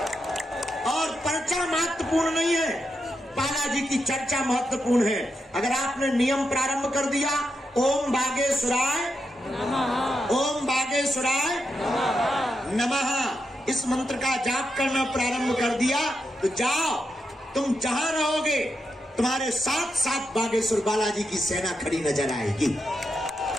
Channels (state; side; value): normal; both; correlation 0.85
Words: और पर्चा महत्वपूर्ण नहीं है, बालाजी की चर्चा महत्वपूर्ण है। अगर आपने नियम प्रारंभ कर दिया, ओम बागेश्वराय नमः, ओम बागेश्वराय नमः, इस मंत्र का जाप करना प्रारंभ कर दिया, तो जाओ, तुम जहां रहोगे तुम्हारे साथ साथ बागेश्वर बालाजी की सेना खड़ी नजर आएगी।